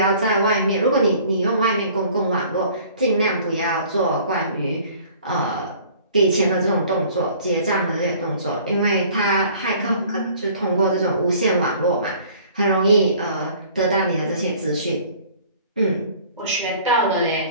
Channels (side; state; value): both; inverted; correlation -0.52